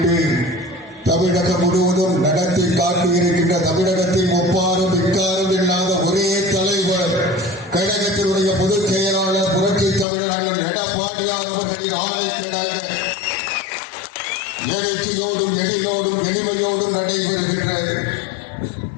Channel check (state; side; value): drops out; right; at 10.1 s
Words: தமிழகம் முழுவதும் நடத்தி காட்டியிருக்கின்ற தமிழகத்தில் ஒப்பாரும் இக்காரும் இல்லாத ஒரே தலைவர் கழகத்தினுடைய பொதுச் செயலாளர் புரட்சி தமிழர் அண்ணன் எடப்பாடியார் அவர்களின் ஆணைக்கிணங்க எழுச்சியோடும் எளியோடும் எளிமையோடும் நடைபெறுகின்ற